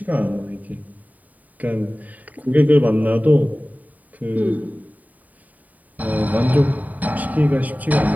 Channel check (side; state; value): left; late; 0.075 ms